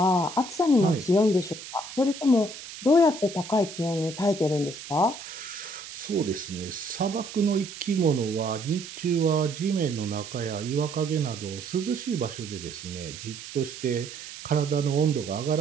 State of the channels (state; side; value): noise; right; hiss, 12 dB below the sound